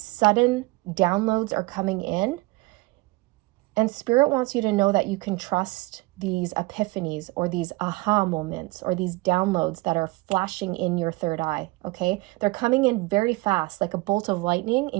downloads are coming in. And Spirit wants you to know that you can trust these epiphanies, or these aha moments, or these downloads that are flashing in your third eye, okay? They're coming in very fast, like a bolt of lightning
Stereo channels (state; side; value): quieter; left; 22.3 dB